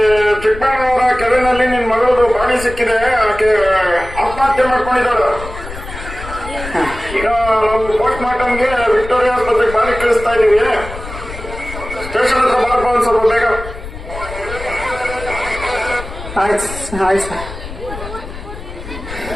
ಚಿಕ್ಕಬಳ್ಳಾಪುರ ಕೆರೆನಲ್ಲಿ ನಿನ್ ಮಗಳದು ಬಾಡಿ ಸಿಕ್ಕಿದೆ. ಆಕೆ ಆತ್ಮಹತ್ಯೆ ಮಾಡ್ಕೊಂಡಿದ್ದಾಳು. ಈಗ ನಾವು ಪೋಸ್ಟ್ ಮಾರ್ಟಮ್ಗೆ ವಿಕ್ಟೋರಿಯಾ ಆಸ್ಪತ್ರೆಗೆ ಬಾಡಿ ಕಳಿಸ್ತಾ ಇದೀವಿ. ಸ್ಟೇಷನ್ ಹತ್ರ ಬಾರಪ್ಪ ಒಂದ್ ಸ್ವಲ್ಪ ಬೇಗ. ಆಯ್ತು ಆಯ್ತು ಸರ್.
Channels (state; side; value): noise; left; rumble, 11 dB below the sound